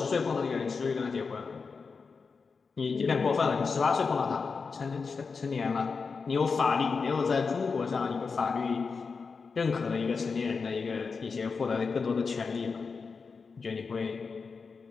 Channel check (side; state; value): right; quieter; 5.0 dB